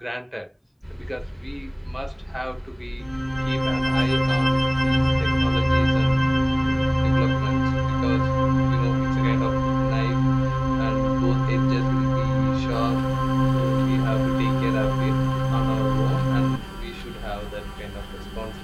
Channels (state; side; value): identical; both; correlation 1.00